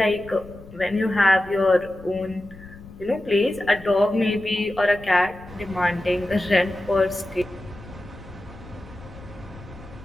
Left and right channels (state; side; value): noise; left; rumble, 18 dB below the sound